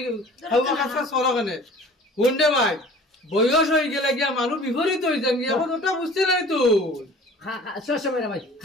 খাওয়া কাছে সরো কেন কোনটে ভাই বয়স হয়ে গেলে গিয়া মানুষ বিপরীত হয়ে যান গিয়া এখন ওটা বুঝতে নাই তো সবসময় ভাই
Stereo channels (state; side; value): normal; both; correlation 0.46